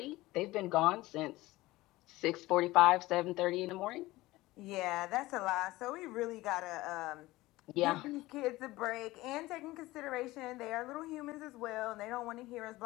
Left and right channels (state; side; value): quieter; right; 18.7 dB